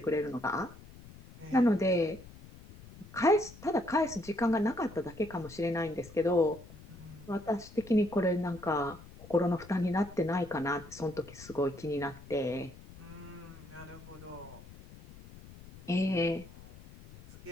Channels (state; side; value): noise; left; rumble, 18 dB below the sound